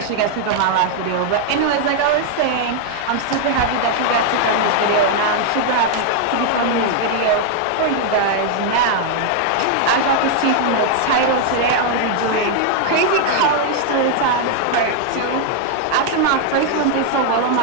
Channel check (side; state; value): both; different; correlation 0.00